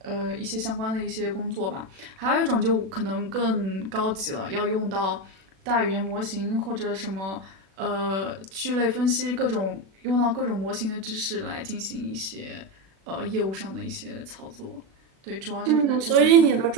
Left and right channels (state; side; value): late; left; 36 ms